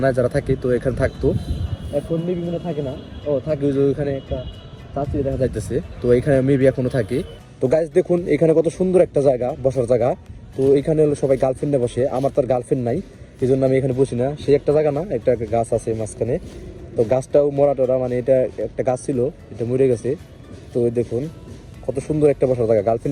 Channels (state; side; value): identical; both; correlation 1.00